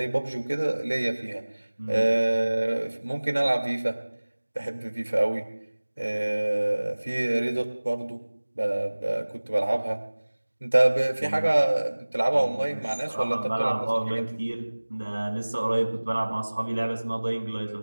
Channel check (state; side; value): inverted; both; correlation -1.00